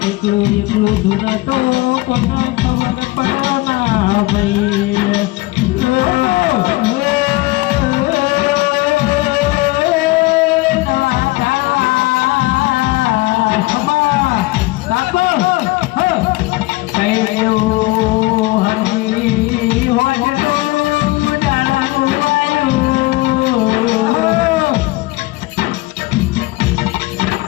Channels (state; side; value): quieter; right; 20.6 dB